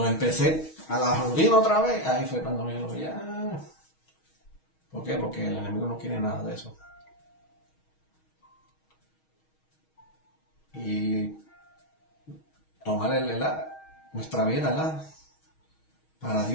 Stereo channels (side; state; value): right; late; 6.3 ms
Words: empecé a la rutina otra vez, ahí fue cuando yo lo vi. ¿Por qué? Porque el enemigo no quiere nada de eso. Y tomar nuestra vida, ¿verdad? Para